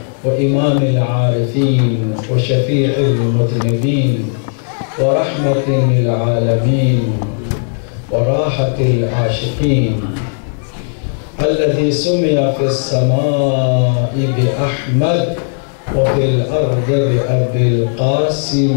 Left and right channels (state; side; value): silent; right; digital silence